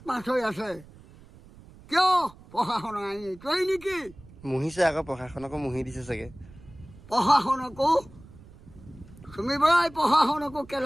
হৈ আছে। কিয় প্ৰশাসনৰ আইন এইটোৱেই নেকি? মুহিছে আকৌ, প্ৰশাসনকো মুহি দিছে চাগে। প্ৰশাসনকো চুমি বৰাই প্ৰশাসনকো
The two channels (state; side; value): noise; right; rumble, 21 dB below the sound